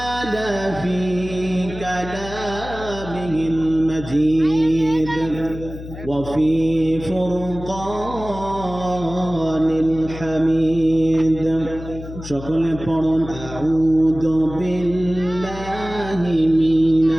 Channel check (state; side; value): noise; left; hum, 12 dB below the sound